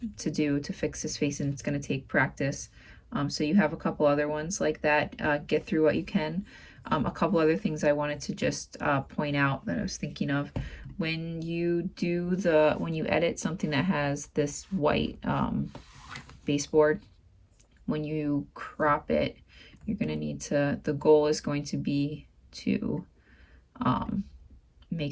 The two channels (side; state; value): both; identical; correlation 1.00